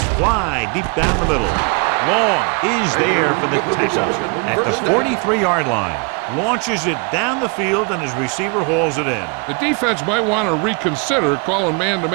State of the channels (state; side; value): quieter; left; 34.8 dB